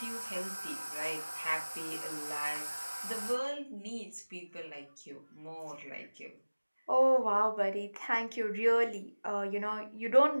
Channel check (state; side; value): inverted; both; correlation -1.00